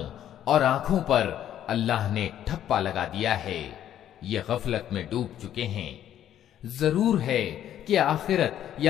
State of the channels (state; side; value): quieter; right; 11.1 dB